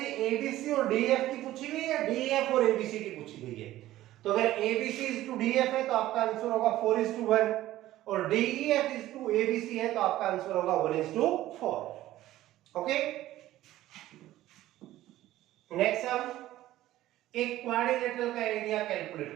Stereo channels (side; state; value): left; quieter; 14.9 dB